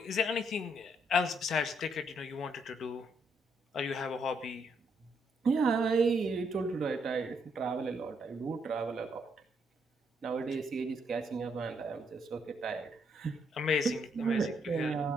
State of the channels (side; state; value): both; normal; correlation 0.74